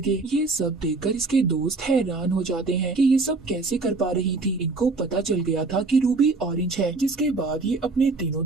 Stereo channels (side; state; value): left; quieter; 3.7 dB